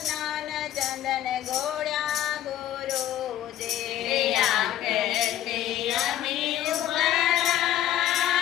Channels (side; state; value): right; quieter; 12.2 dB